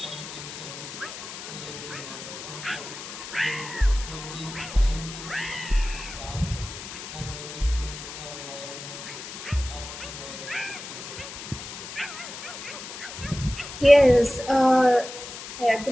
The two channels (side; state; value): left; noise; hiss, 10 dB below the sound